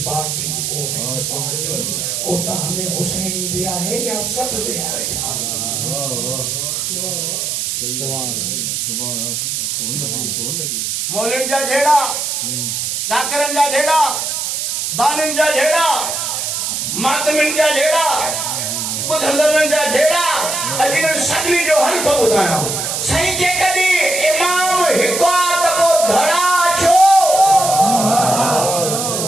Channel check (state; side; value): noise; right; hiss, 2 dB below the sound